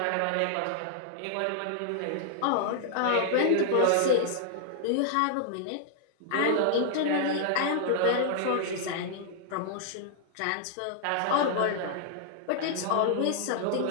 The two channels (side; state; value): both; different; correlation -0.01